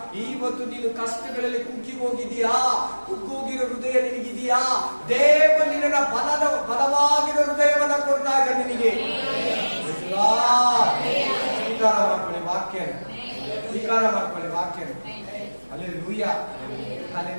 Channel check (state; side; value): inverted; both; correlation -1.00